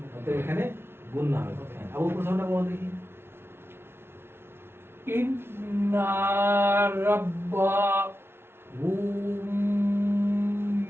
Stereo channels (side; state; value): left; late; 0.12 ms